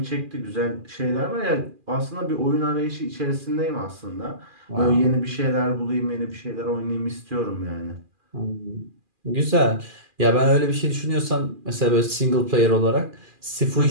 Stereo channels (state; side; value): late; left; 2.4 ms